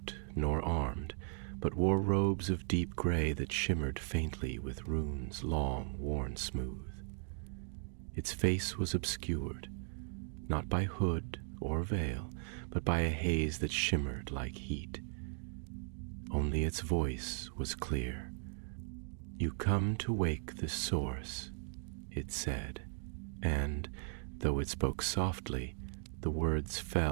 nor armed, but wore robes of deep gray that shimmered faintly with runes long worn smooth. Its face was obscured, not by hood or veil, but by a haze that shimmered like heat. Only its voice was clear. "You come to wake the source," it said, and, though it spoke softly, the words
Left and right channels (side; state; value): left; silent; 53 dB below the other